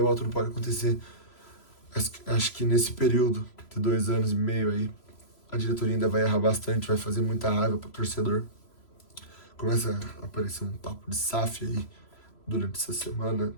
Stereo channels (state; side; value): late; right; 3.0 ms